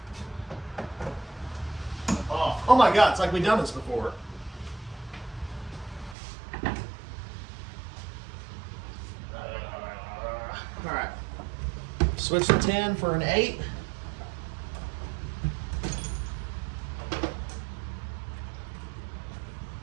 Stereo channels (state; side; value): drops out; left; at 6.2 s